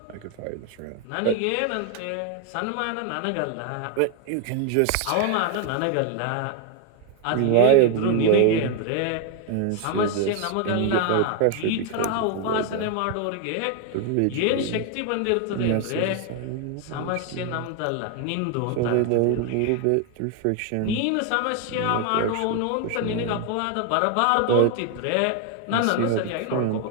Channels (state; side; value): different; both; correlation 0.01